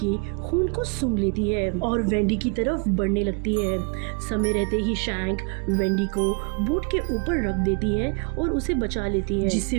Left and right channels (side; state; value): left; quieter; 35.2 dB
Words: के खून को सूंघ लेती है और वेंडी की तरफ बढ़ने लगती है। समय रहते ही शैंक वेंडी को बोट के ऊपर रख देती है और उसे बचा लेती है, जिससे